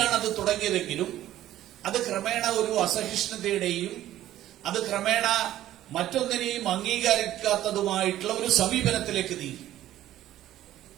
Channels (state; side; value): quieter; left; 13.4 dB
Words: അത് തുടങ്ങിയതെങ്കിലും അത് ക്രമേണ ഒരു അസഹിഷ്ണുതയുടെയും അത് ക്രമേണ മറ്റൊന്നിനെയും അംഗീകരിക്കാത്തതുമായിട്ടുള്ള ഒരു സമീപനത്തിലേക്ക് നീങ്ങി.